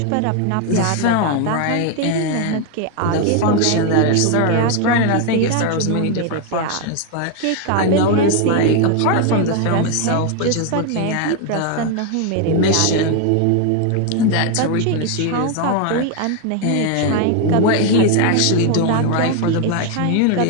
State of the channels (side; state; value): both; different; correlation 0.01